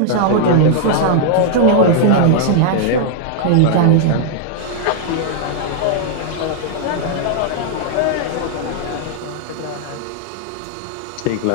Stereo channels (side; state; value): both; different; correlation -0.01